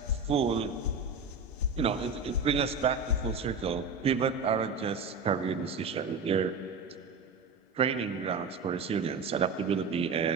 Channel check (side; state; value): left; quieter; 4.2 dB